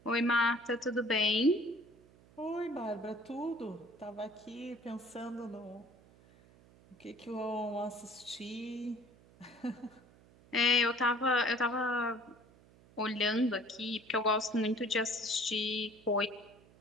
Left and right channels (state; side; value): noise; right; hum, 26 dB below the sound